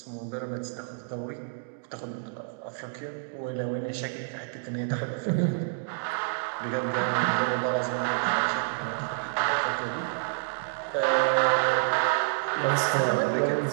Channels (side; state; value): left; silent; digital silence